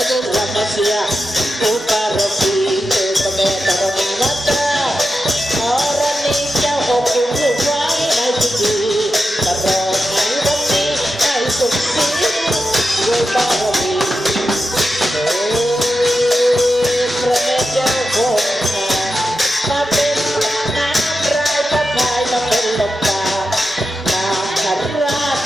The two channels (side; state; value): both; normal; correlation 0.90